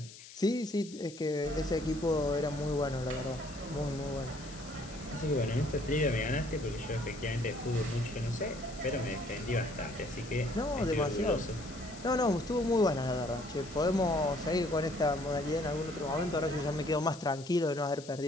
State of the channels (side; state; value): left; noise; hiss, 17 dB below the sound